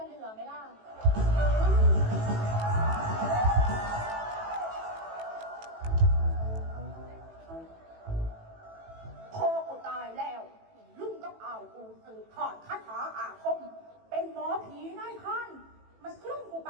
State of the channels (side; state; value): left; late; 18 ms